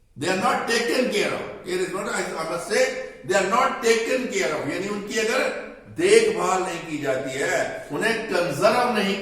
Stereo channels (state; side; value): identical; both; correlation 1.00